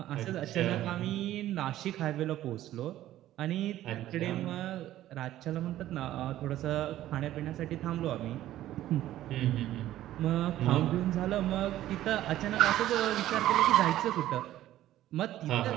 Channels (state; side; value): quieter; left; 13.6 dB